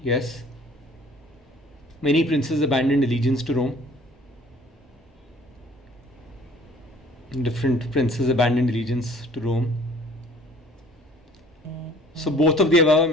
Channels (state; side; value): normal; both; correlation 0.53